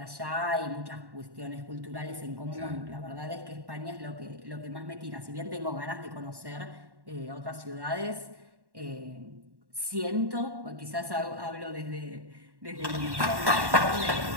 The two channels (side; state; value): left; late; 1.1 ms